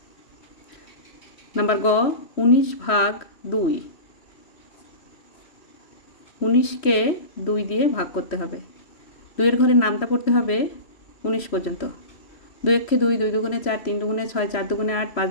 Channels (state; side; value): late; right; 3.1 ms